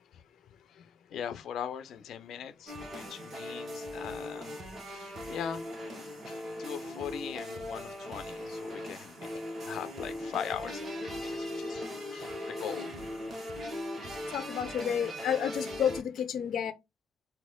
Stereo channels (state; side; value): quieter; right; 5.0 dB